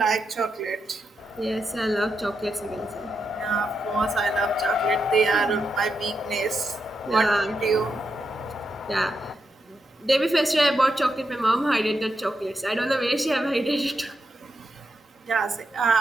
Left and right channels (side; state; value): both; normal; correlation 0.84